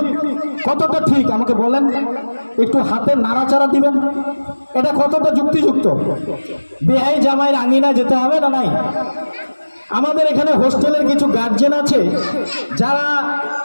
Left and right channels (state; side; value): inverted; both; correlation -1.00